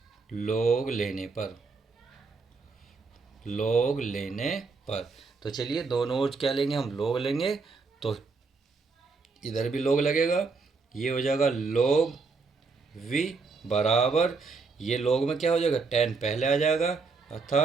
लोग लेने पर, लोग लेने पर। तो चलिए दोनों ओर क्या लेंगे, हम लोग लेंगे। तो इधर भी लोग लगेगा, ये हो जाएगा log v बराबर, ये log में क्या हो जाएगा, 10 पहले आ जाएगा,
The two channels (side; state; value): left; quieter; 4.4 dB